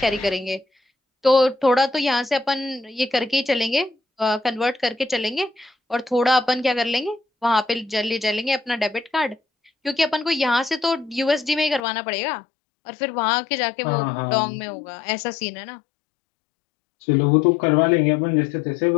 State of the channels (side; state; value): right; drops out; at 11.8 s